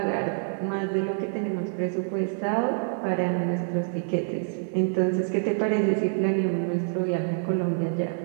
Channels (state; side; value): silent; left; digital silence